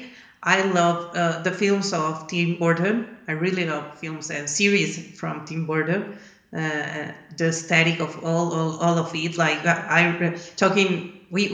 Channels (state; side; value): identical; both; correlation 1.00